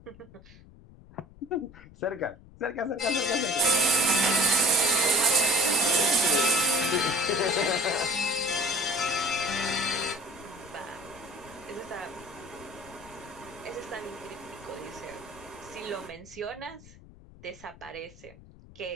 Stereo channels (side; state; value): left; noise; rumble, 21 dB below the sound